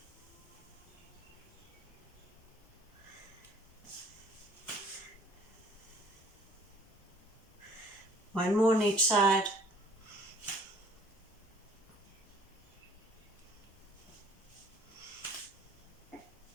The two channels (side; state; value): both; normal; correlation 0.56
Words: One more on each side.